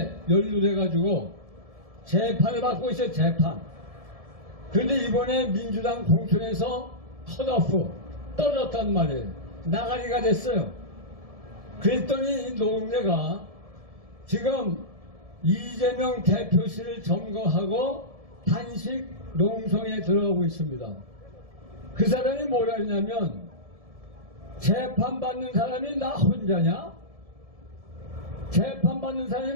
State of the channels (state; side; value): late; left; 1.7 ms